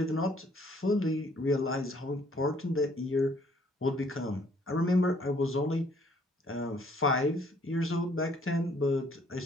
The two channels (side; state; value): both; normal; correlation 0.62